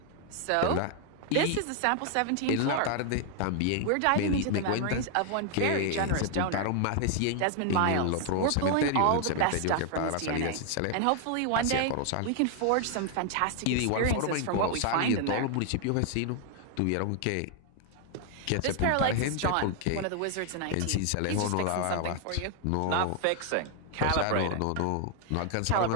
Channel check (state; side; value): different; both; correlation 0.00